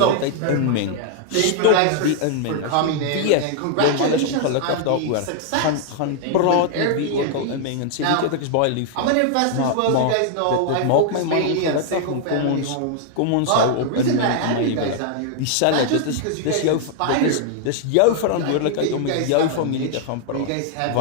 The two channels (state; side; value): different; both; correlation 0.00